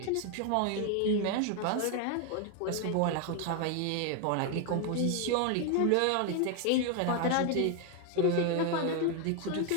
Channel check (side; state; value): both; different; correlation 0.01